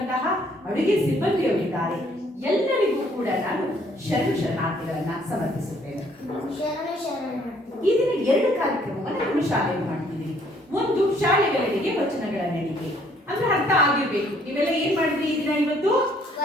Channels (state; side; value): normal; both; correlation 0.63